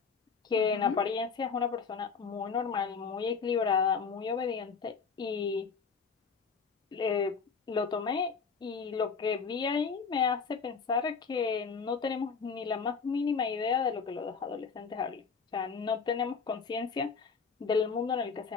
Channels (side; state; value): right; quieter; 5.5 dB